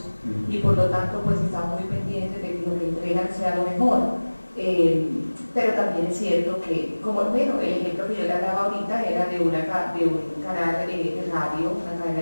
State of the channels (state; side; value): inverted; both; correlation -1.00